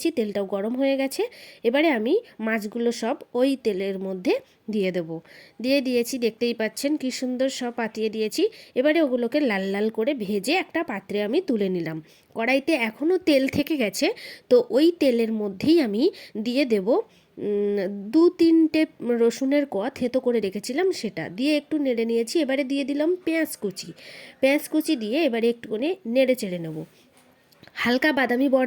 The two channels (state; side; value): identical; both; correlation 1.00